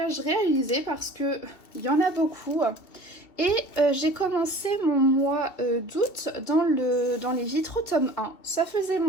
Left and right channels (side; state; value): right; late; 2.7 ms